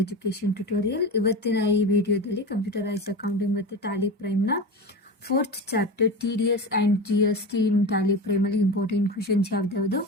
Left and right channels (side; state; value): both; normal; correlation 0.26